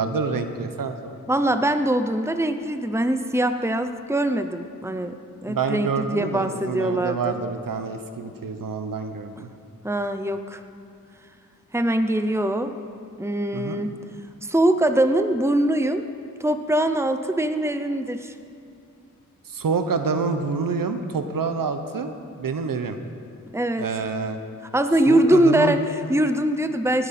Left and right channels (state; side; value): normal; both; correlation 0.65